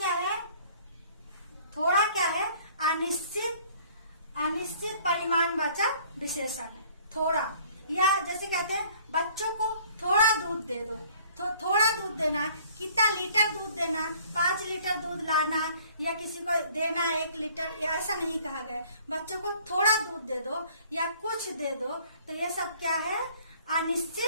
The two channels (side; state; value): both; inverted; correlation -0.55